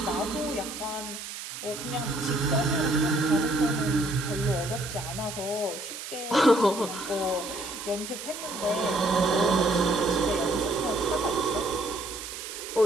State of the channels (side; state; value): right; noise; hiss, 9 dB below the sound